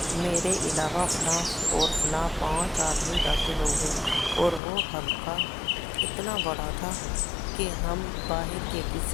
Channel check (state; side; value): drops out; right; at 4.6 s